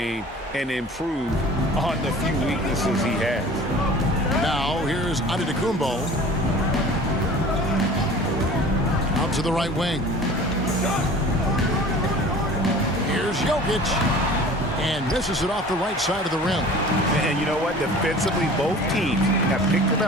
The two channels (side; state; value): both; normal; correlation 0.44